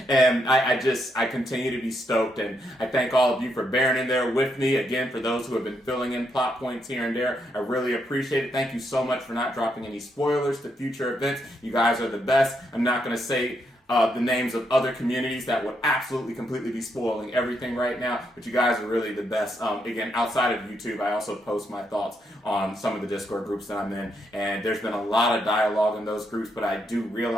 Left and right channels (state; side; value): normal; both; correlation 0.78